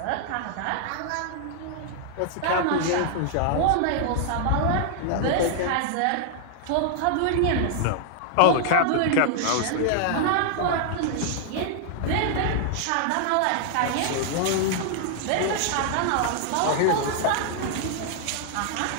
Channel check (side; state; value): both; different; correlation 0.00